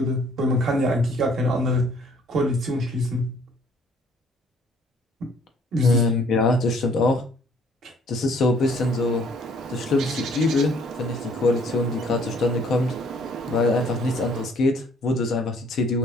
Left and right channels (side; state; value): both; normal; correlation 0.60